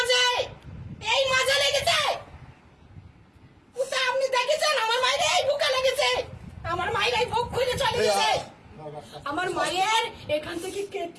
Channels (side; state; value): both; identical; correlation 1.00